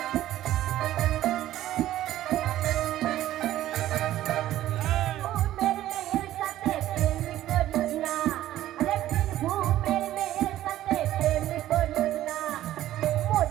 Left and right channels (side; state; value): left; quieter; 13.7 dB